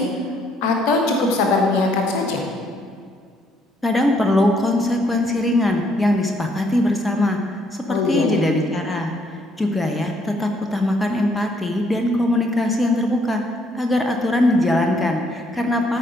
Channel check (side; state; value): both; normal; correlation 0.69